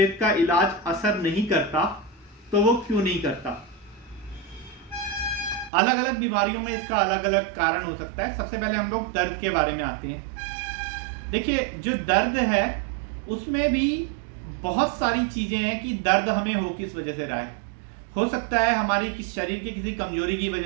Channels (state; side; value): drops out; left; at 5.7 s